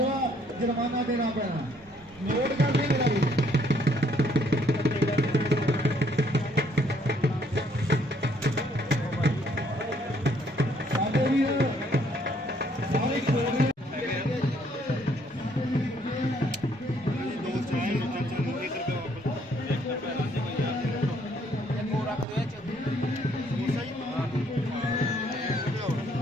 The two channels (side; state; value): both; normal; correlation 0.66